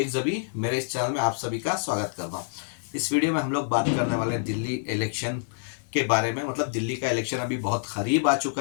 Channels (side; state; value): right; silent; digital silence